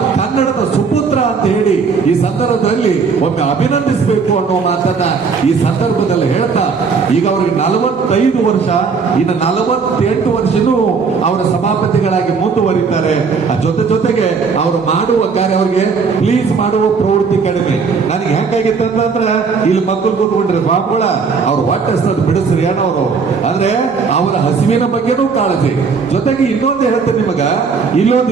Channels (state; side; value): quieter; left; 5.2 dB